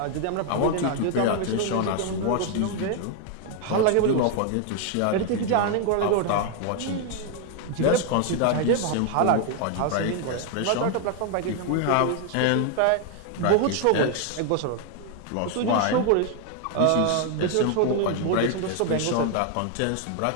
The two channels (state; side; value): different; both; correlation 0.01